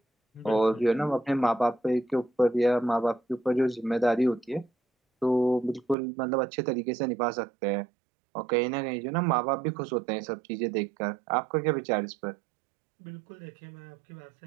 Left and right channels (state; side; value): drops out; left; at 6.0 s